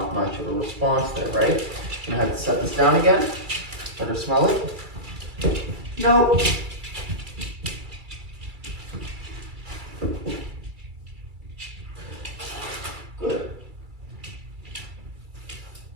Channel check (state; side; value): late; left; 2.3 ms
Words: much of a response there, right? I'm going to have to set this down again. Let her smell it. Nope. Good.